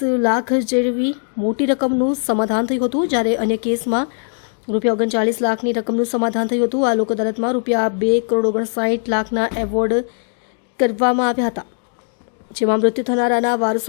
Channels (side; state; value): right; silent; digital silence